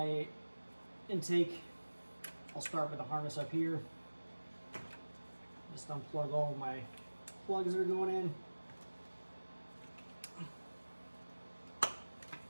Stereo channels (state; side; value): inverted; both; correlation -1.00